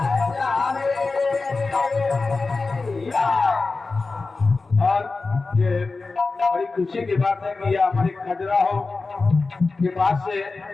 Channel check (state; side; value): quieter; right; 3.9 dB